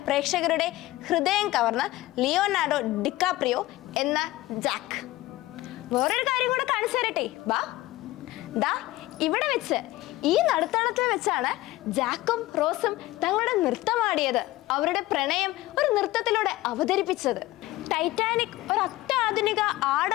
പ്രേക്ഷകരുടെ ഹൃദയം കവർന്ന ലിയോനാർഡോ ഡിക്കാപ്രിയോ എന്ന ജാക്ക്. വേറൊരു കാര്യം കൂടെ കാണിച്ചു തരട്ടെ, വാ. ദാ ഇവിടെ വെച്ച്, ഈ നടുത്തളത്തിൽ വെച്ചാണ് ജാക്കും റോസും തങ്ങളുടെ നൃത്തമാടിയത്, അവരുടെ പ്രണയം ഒരു നൃത്തത്തിലൂടെ അവതരിപ്പിച്ചത്. ടൈറ്റാനിക് ഒരു അത്യാധുനിക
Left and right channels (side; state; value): right; quieter; 17.9 dB